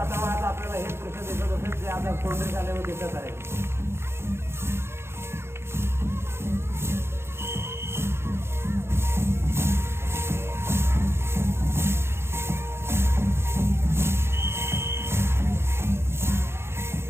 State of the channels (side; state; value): left; late; 0.12 ms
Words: आपल्याला हे दृश्य दिसत असेल जे आता कोंढरी शाळेवर दिसत आहे.